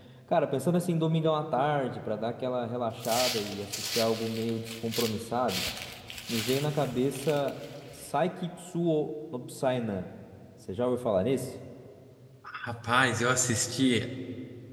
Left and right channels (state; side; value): identical; both; correlation 1.00